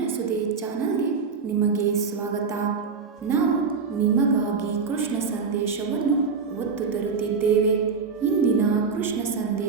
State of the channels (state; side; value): quieter; left; 5.3 dB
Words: ಸುದ್ದಿ ಚಾನಲ್ಗೆ ನಿಮಗೆ ಸ್ವಾಗತ. ನಾವು ನಿಮಗಾಗಿ ಕೃಷ್ಣ ಸಂದೇಶವನ್ನು ಒತ್ತು ತರುತ್ತಿದ್ದೇವೆ. ಇಂದಿನ ಕೃಷ್ಣ